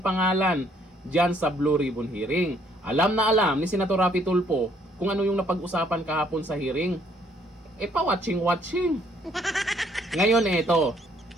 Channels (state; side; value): normal; both; correlation 0.66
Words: pangalan dyan sa Blue Ribbon hearing. Alam na alam ni Senator Raffy Tulfo kung ano yung napag-usapan kahapon sa hearing. Pa-watching. Ngayon ito,